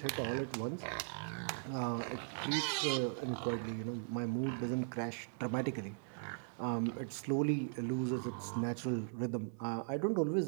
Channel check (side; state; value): left; silent; digital silence